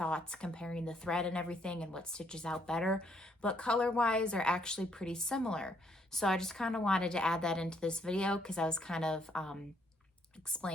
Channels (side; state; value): both; normal; correlation 0.70